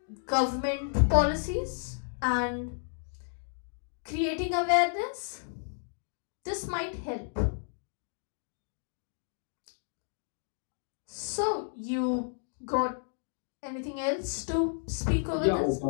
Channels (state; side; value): silent; right; digital silence